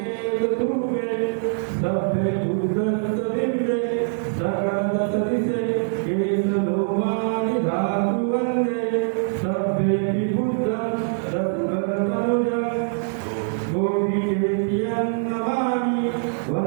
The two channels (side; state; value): left; silent; digital silence